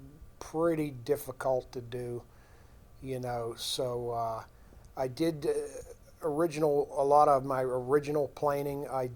pretty difficult to do. So I did a lot of my original planing I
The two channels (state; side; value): identical; both; correlation 1.00